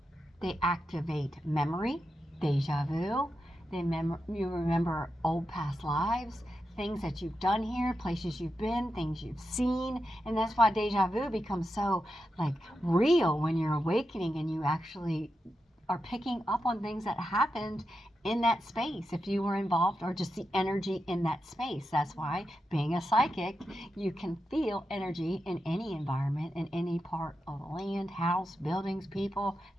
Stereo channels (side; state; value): both; normal; correlation 0.88